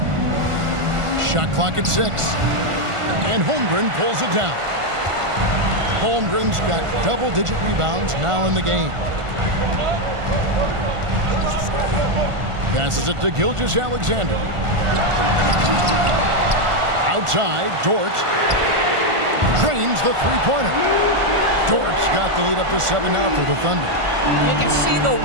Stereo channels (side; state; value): left; late; 1.5 ms